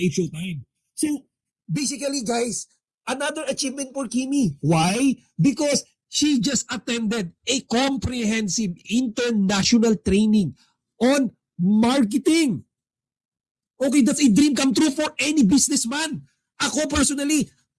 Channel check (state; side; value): identical; both; correlation 1.00